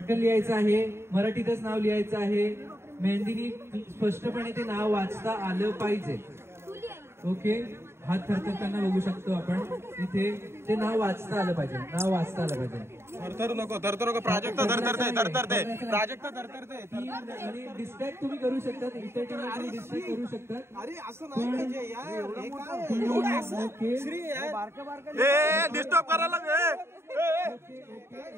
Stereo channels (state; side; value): late; left; 0.12 ms